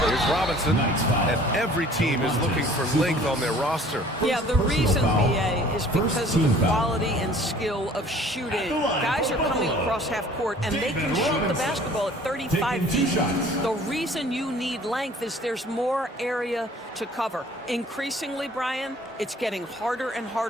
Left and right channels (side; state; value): both; normal; correlation 0.52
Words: Here's Robinson, and every team is looking for length on their roster. Yeah, the reason, BA, is because of the quality and skill of shooting. Guys are coming across half court, and they can shoot the basketball at 35 feet. The reason you need length is there's more area to cover. Increasingly, Brian, it's getting harder and